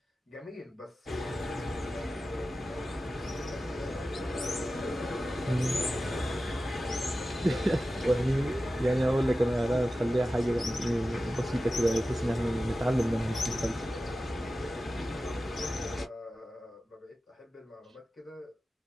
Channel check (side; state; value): both; normal; correlation 0.94